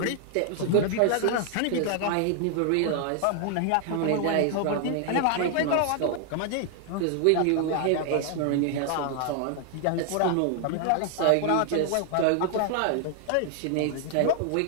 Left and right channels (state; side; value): different; both; correlation 0.00